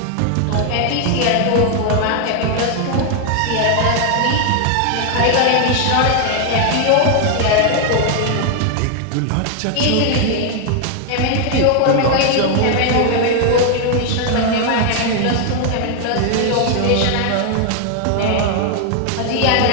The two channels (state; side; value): different; both; correlation 0.00